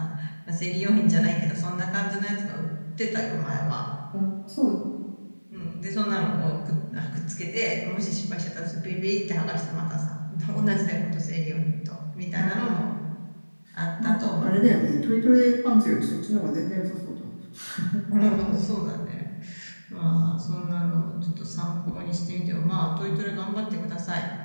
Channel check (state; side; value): inverted; both; correlation -1.00